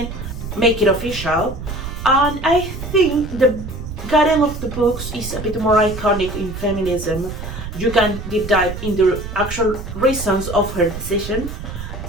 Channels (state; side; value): noise; right; rumble, 8 dB below the sound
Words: make it official. And I think the Karen of the books is a bit more iconic in feminism. You can deep dive in the actual reasons of her decision,